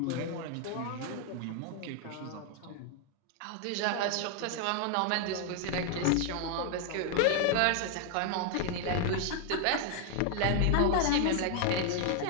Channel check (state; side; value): different; both; correlation 0.00